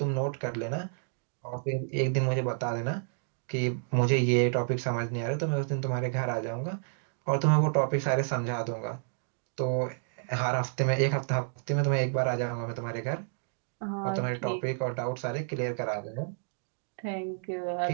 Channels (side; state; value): left; silent; digital silence